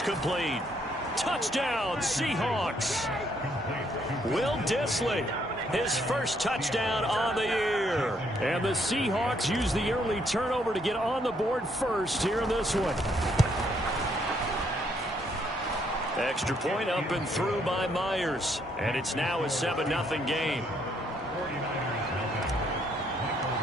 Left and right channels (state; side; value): normal; both; correlation 0.71